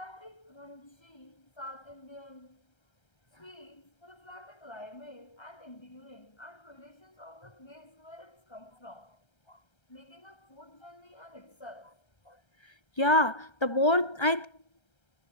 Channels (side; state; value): right; late; 1.3 ms